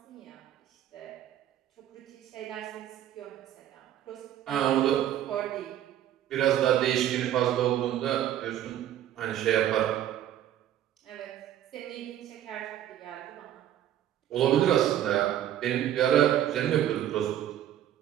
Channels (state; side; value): quieter; left; 11.5 dB